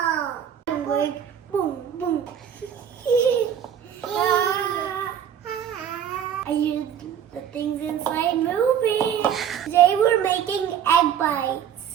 Like boom, boom. I used the things inside moving. Today we're making egg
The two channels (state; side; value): quieter; left; 8.9 dB